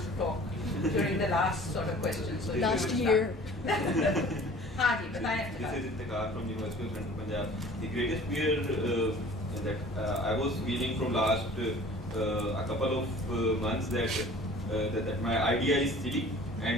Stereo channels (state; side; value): normal; both; correlation 0.47